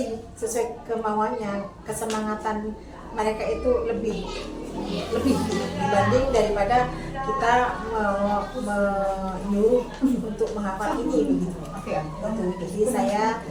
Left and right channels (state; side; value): identical; both; correlation 1.00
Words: sesuai kemauannya, kesemangatan mereka itu lebih dibanding daripada kita menyuruh untuk menghafal ini begitu. Jadi saya